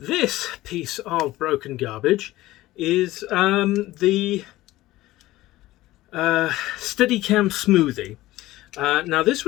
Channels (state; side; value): quieter; right; 16.9 dB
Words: piece of broken garbage is the Steadicam Smoothie. Now this